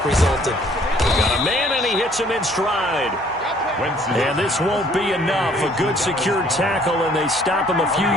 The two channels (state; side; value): normal; both; correlation 0.60